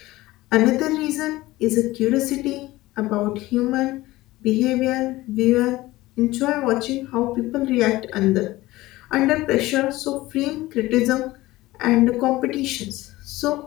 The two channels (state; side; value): quieter; right; 18.3 dB